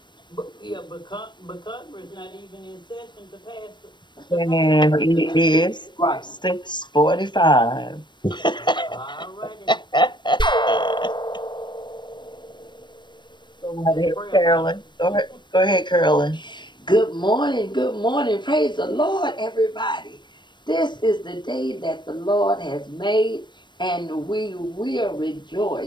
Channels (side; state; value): right; late; 0.22 ms